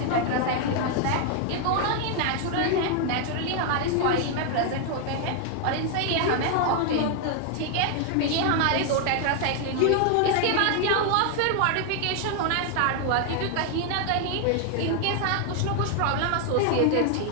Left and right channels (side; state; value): both; different; correlation 0.00